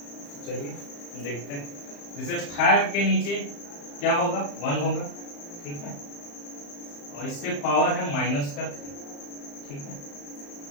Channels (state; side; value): late; right; 35 ms